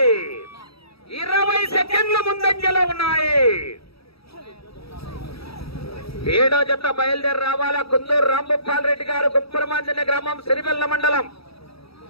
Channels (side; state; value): right; late; 0.77 ms